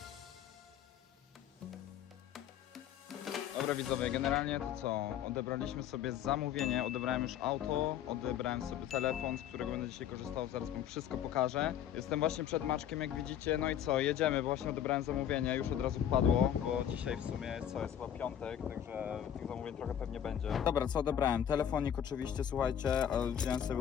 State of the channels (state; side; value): quieter; right; 9.9 dB